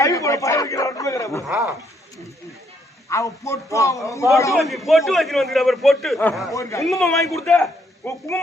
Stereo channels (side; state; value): both; normal; correlation 0.71